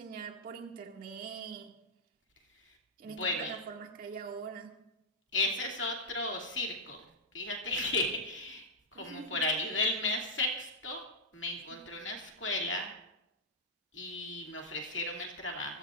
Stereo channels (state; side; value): normal; both; correlation -0.07